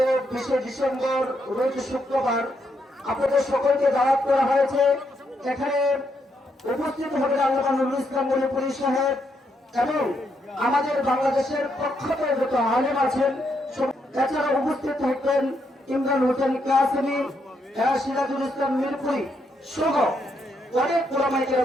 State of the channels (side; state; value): both; normal; correlation 0.78